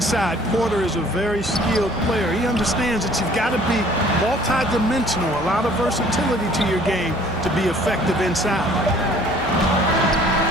Porter is a very skilled player. He understands that you've got to be multi-dimensional, a lot of versatility to your game to be effective inside.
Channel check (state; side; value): noise; right; hum, 13 dB below the sound